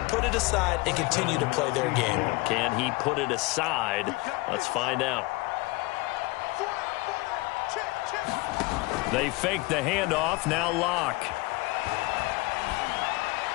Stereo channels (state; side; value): quieter; right; 23.1 dB